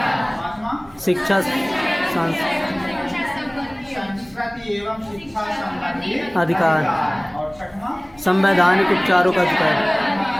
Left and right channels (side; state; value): right; noise; hum, 28 dB below the sound